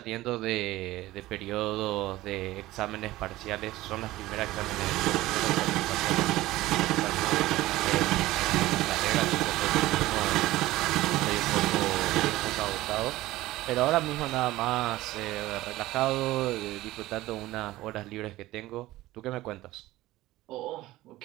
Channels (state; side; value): quieter; left; 17.0 dB